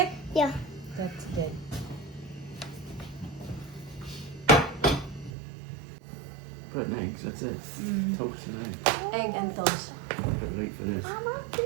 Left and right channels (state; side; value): drops out; left; at 5.3 s